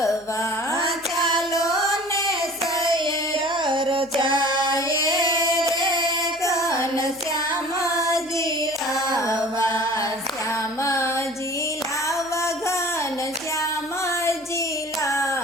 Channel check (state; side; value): noise; left; hum, 29 dB below the sound